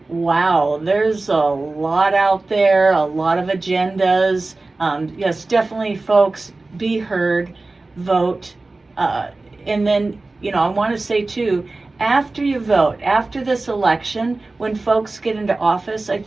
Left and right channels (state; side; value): quieter; left; 3.3 dB